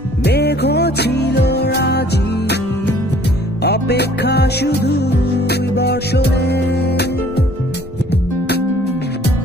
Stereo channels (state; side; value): normal; both; correlation 0.56